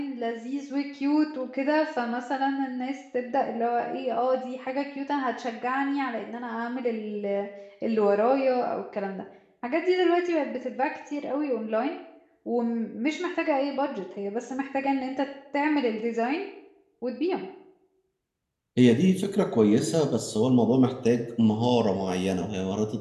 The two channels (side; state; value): both; identical; correlation 1.00